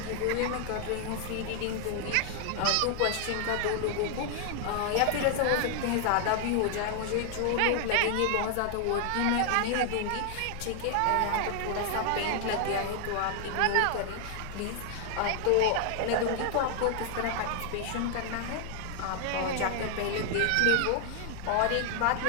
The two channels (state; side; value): different; both; correlation 0.00